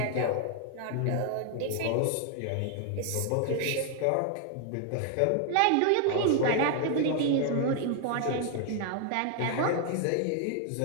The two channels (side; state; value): both; different; correlation 0.00